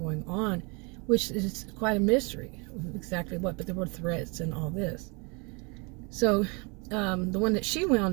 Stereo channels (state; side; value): quieter; left; 31.0 dB